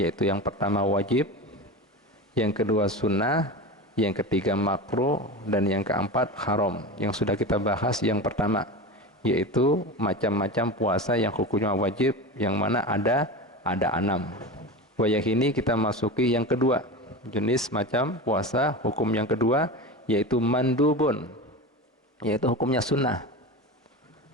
yang pertama wajib, yang kedua sunnah, yang ketiga makruh, dan yang keempat haram. Yang sudah kita bahas yang pertama, yaitu macam-macam puasa yang hukumnya wajib, yang mana ada 6. Yang ini kita masuki yang kedua, jenis macam puasa hukum yang kedua, yaitu mandubun, yaitu hukumnya sunnah.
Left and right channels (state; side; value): normal; both; correlation 0.27